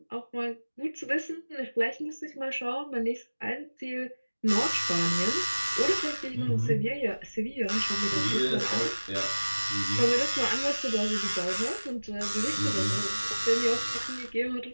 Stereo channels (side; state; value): both; inverted; correlation -1.00